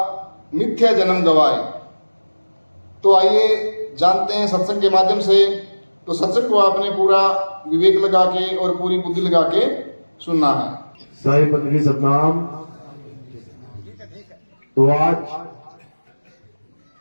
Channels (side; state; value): both; inverted; correlation -1.00